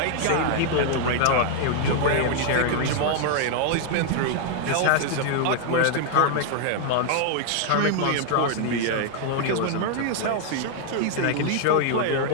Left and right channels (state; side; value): different; both; correlation 0.00